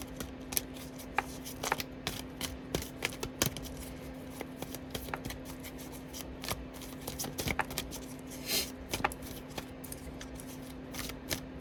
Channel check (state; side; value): identical; both; correlation 1.00